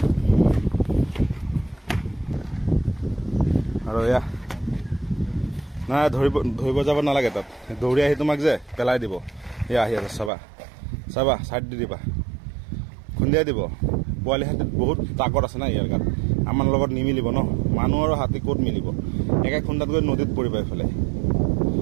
আৰু এয়া নাই ধৰিব যাব নালাগে তাত দৌৰি আহি তোমাক যে পেলাই দিব এয়া আহি আছে চাবা চাইড দি দিবা খুন্দিয়াই দিব পোৱালি হাতীত বহুত তাকত আছে না ইয়াৰ গাত আমাৰ লগত নিমিলিব ন মানুহ আৰু হাতী ক'ত মিলিব একে খুন্দাত গৈ নদীত পৰিব এইফালে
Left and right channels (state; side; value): drops out; left; at 10.3 s